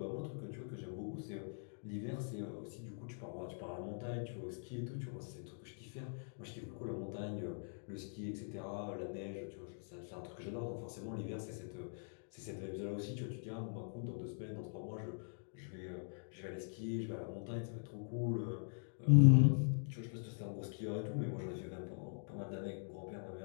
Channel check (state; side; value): silent; right; digital silence